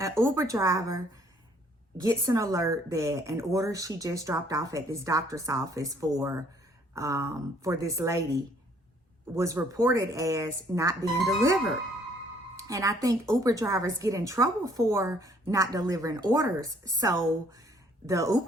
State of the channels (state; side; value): normal; both; correlation 0.62